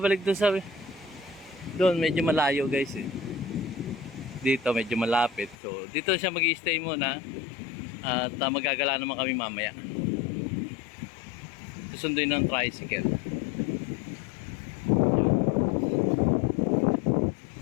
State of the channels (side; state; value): right; drops out; at 5.6 s